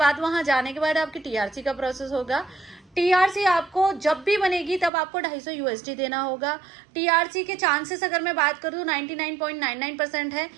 वहां जाने के बाद आपकी टीआरसी का प्रोसेस होगा। टीआरसी आपको जब भी बनेगी तब आपको 250 USD देना होगा। टीआरसी के चांसेस अगर मैं बात करूँ 99.99% है।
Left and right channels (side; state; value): left; drops out; at 4.9 s